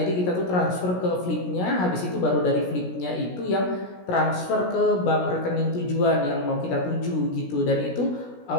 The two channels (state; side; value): late; right; 17 ms